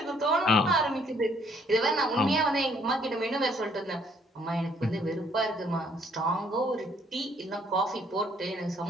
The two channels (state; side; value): normal; both; correlation 0.65